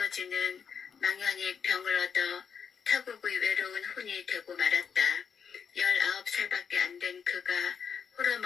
망연히 병을 얻어 타국의 외로운 혼이 되고 말았다. 19살밖에 안 된 그가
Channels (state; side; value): quieter; right; 6.8 dB